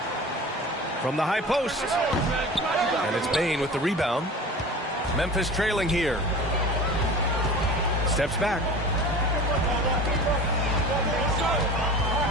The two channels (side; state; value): both; normal; correlation 0.37